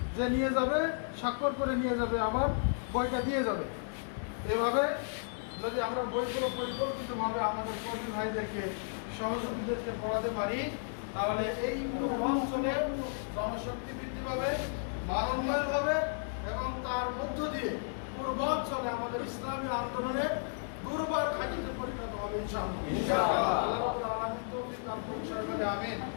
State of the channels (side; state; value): right; silent; digital silence